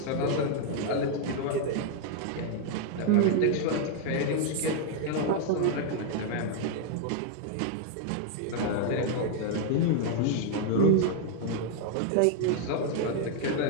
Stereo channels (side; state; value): both; different; correlation 0.00